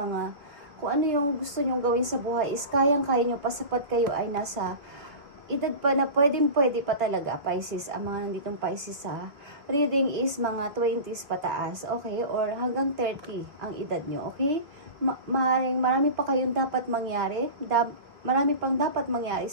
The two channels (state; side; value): late; left; 3.1 ms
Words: Kung ano yung gusto niyo gawin sa buhay is kayang-kaya niyo pa sapat kayo ay nasa edad pa na pwede pa talaga, Pisces. Ang mga nanditong Pisces sa reading is mga 20s pataas, okay? Or hanggang 30 ang edad nyo, okay? Marami pa kayong dapat mangyari. Marami pang dapat mangyari